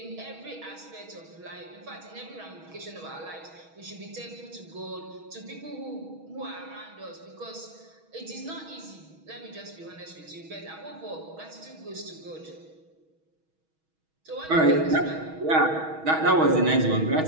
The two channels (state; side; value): late; left; 6.3 ms